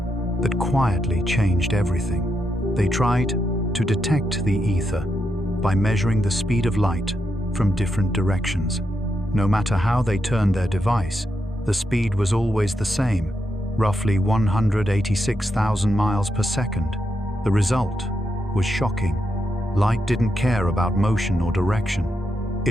that quietly changed everything. They tried to detect the ether by measuring the speed of light from different directions. No matter how they turned their device, the speed was always the same, roughly 186,000 miles per second. The result was shocking. Light didn't care about motion or direction.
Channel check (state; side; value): normal; both; correlation 0.83